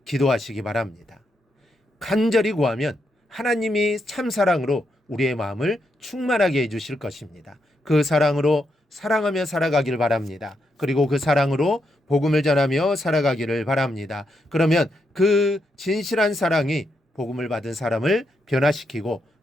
기도하시기 바랍니다. 간절히 구하면 하나님이 참 사랑으로 우리의 마음을 충만하게 해주실 것입니다. 그 사랑으로 사랑하며 살아가기를 바랍니다. 그리고 그 사랑으로 복음을 전하며 살아가기를 바랍니다. 그러면 그 진실한 사랑이 복음을 받은 사람을 변화시키고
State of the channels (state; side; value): normal; both; correlation 0.81